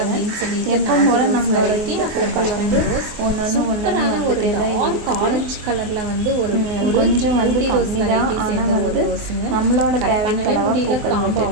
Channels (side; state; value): left; late; 24 ms